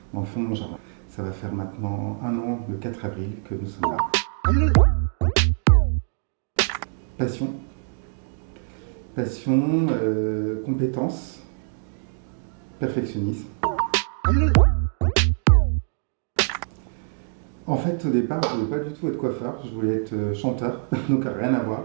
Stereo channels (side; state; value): left; silent; digital silence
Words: dans le fond de mon jardin. Ça va faire maintenant 1 an, le 4 avril, que nous sommes là. Passion, compétence, perfectionnisme. En fait, au départ, je ne voulais pas du tout être coiffeur, je voulais être chanteur, donc rien à voir.